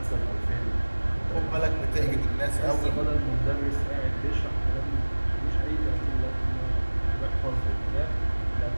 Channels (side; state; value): both; inverted; correlation -1.00